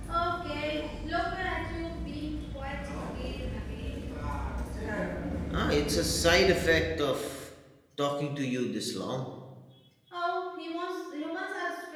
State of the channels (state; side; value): identical; both; correlation 1.00